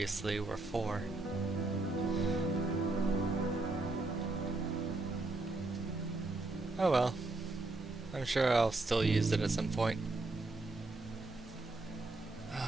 were 4. Oh well. I'm sure I'll still use it at some point.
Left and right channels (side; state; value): left; quieter; 3.1 dB